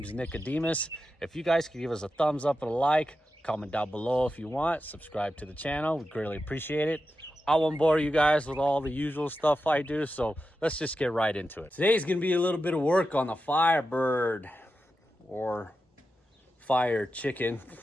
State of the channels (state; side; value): normal; both; correlation 0.90